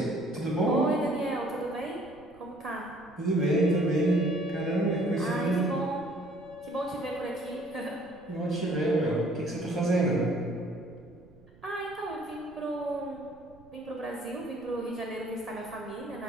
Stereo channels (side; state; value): right; noise; rumble, 25 dB below the sound